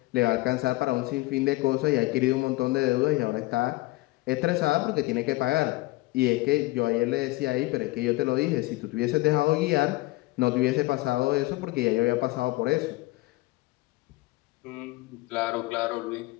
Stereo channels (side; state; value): right; quieter; 20.9 dB